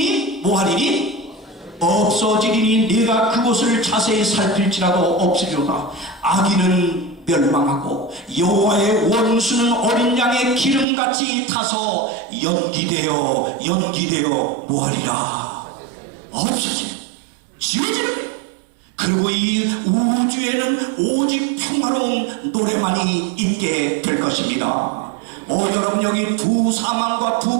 뭐하리니? 없어지리니 내가 그곳을 자세히 살필지라도 없으리로다. 악인은 멸망하고 여호와의 원수는 어린 양의 기름같이 타서 연기되어 뭐하리라? 없어지는, 지워지는 거예요. 그리고 이 우주에는 오직 평화로운 노래만이 있게 될 것입니다. 여러분, 여기 두 사망과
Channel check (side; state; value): left; drops out; at 10.9 s